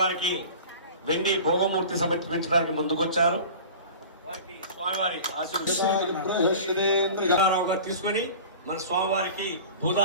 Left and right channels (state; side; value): inverted; both; correlation -0.38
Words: వెండి భోగమూర్తి సమర్పించడానికి ముందుకొచ్చారు. వారికి స్వామివారి ఆశీర్వాదరావు గారు తీసుకొని మన స్వామివారికి